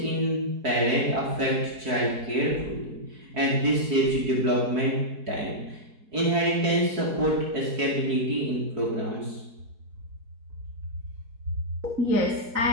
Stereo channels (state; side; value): late; left; 4.6 ms